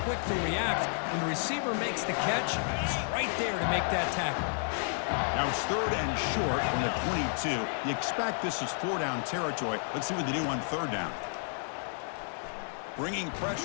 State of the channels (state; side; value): silent; right; 57 dB below the other